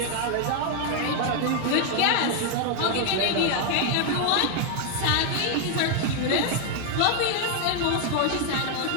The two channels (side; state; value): both; different; correlation 0.00